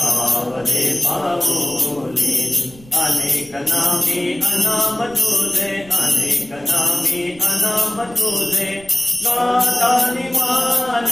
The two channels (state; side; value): noise; right; rumble, 22 dB below the sound